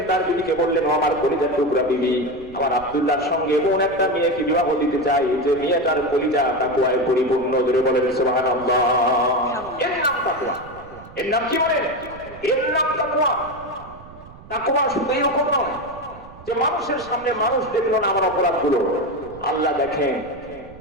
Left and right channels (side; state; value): right; noise; rumble, 19 dB below the sound